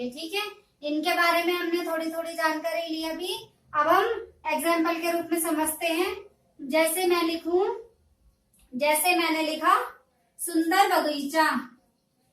ठीक है। इनके बारे में हमने थोड़ी थोड़ी जानकारी ली अभी। अब हम एग्जाम्पल के रूप में समझते हैं। जैसे मैंने लिखा सुंदर बगीचा,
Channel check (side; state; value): both; identical; correlation 1.00